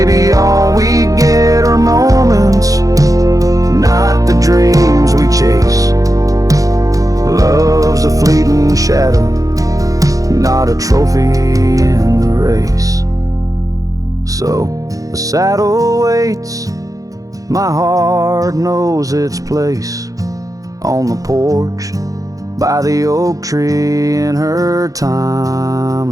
all we get are moments, not the dreams we chase. Love's a fleeting shadow, not a trophy in the race. So the saddle waits, my heart knows its place on the porch by the oak tree in her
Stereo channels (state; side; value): late; left; 0.17 ms